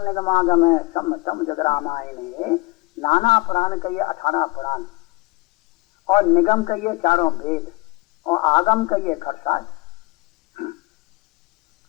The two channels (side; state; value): right; quieter; 21.9 dB